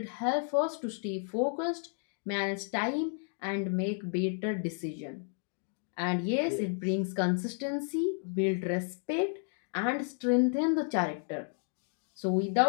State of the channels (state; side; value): silent; right; 56 dB below the other